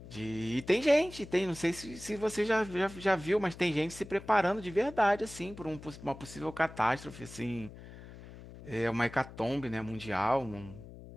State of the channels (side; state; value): left; noise; hum, 16 dB below the sound